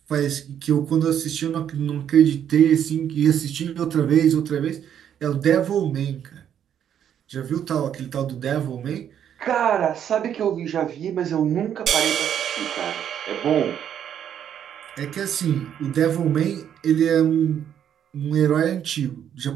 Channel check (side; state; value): left; quieter; 9.4 dB